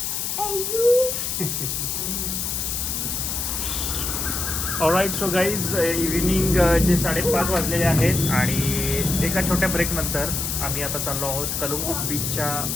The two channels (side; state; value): left; noise; hiss, 2 dB below the sound